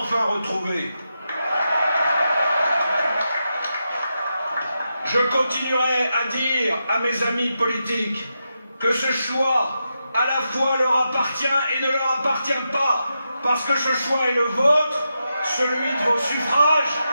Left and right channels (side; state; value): both; inverted; correlation -0.87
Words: retrouvée? Je continuerai à dire à mes amis politiques que ce choix à la fois leur appartient et ne leur appartient pas, parce que ce choix est le vôtre, celui de vos suffrages,